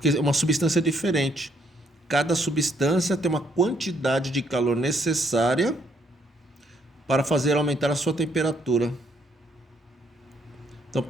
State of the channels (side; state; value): both; normal; correlation 0.70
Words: é uma substância diferente. Cada substância tem uma quantidade de calor necessária para fazer aumentar a sua temperatura. Estão